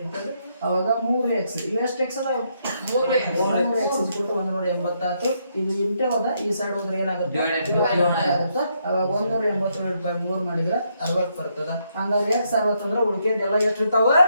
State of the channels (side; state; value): both; inverted; correlation -0.76